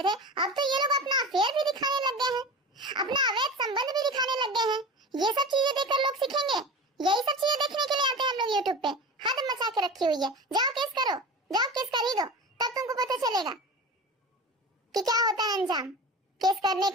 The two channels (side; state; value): both; normal; correlation 0.31